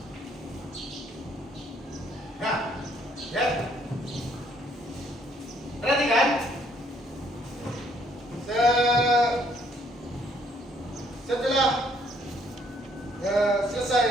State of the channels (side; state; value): both; normal; correlation 0.66